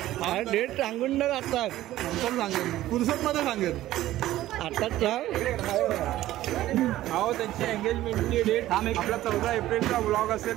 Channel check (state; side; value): quieter; left; 14.7 dB